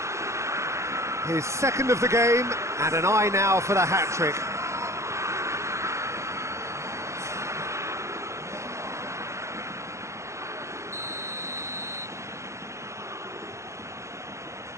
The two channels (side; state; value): left; late; 0.14 ms